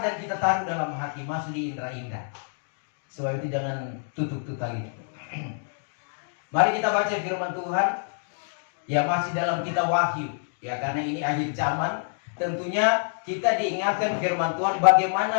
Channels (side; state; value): right; silent; digital silence